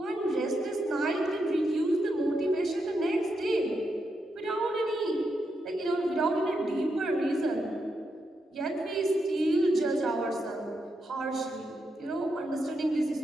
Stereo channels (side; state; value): both; normal; correlation 0.83